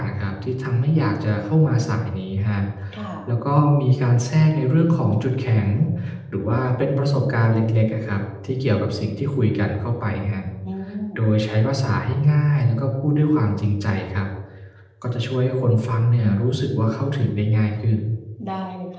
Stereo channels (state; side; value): identical; both; correlation 1.00